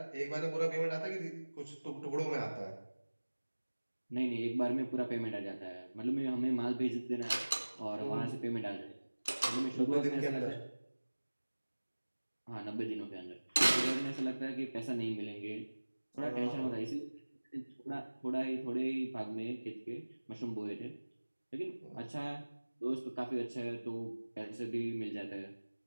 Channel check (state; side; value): inverted; both; correlation -1.00